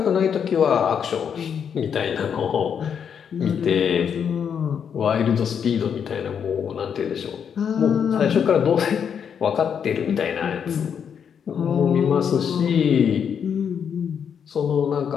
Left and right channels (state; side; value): quieter; right; 7.6 dB